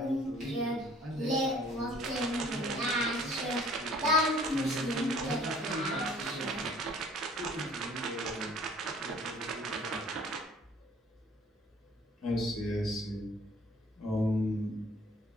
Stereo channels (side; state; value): both; normal; correlation 0.54